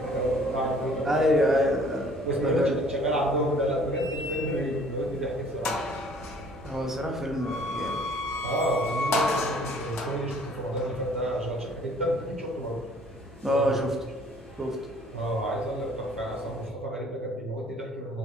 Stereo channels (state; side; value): normal; both; correlation 0.55